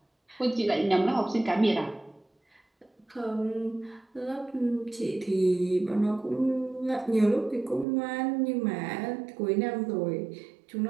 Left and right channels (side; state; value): left; drops out; at 7.9 s